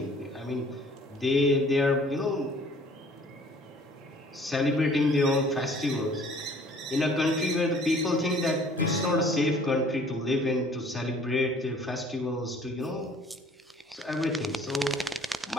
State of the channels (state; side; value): normal; both; correlation 0.54